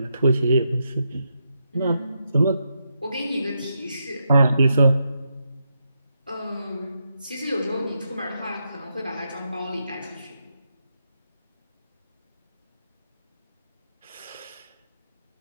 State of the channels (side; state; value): both; inverted; correlation -0.83